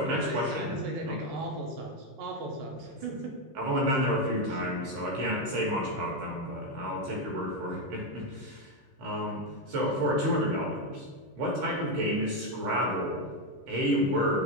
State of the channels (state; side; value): late; left; 15 ms